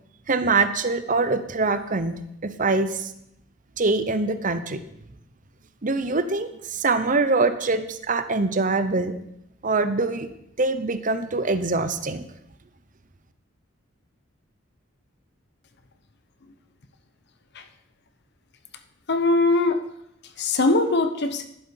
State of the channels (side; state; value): both; normal; correlation 0.08